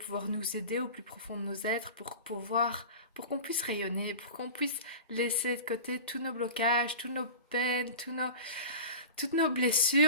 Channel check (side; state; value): both; inverted; correlation -0.34